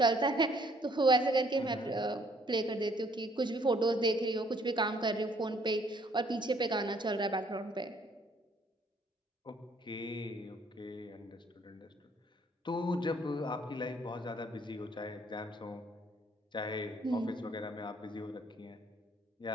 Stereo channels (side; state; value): both; normal; correlation 0.63